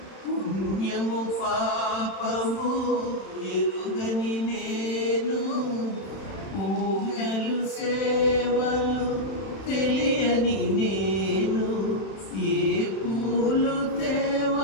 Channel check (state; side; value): late; right; 31 ms